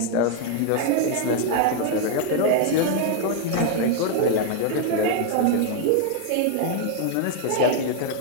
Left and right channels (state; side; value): different; both; correlation 0.00